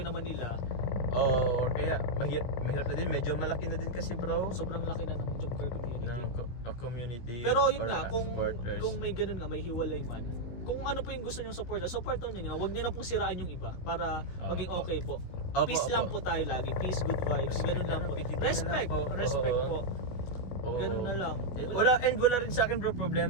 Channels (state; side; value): late; right; 16 ms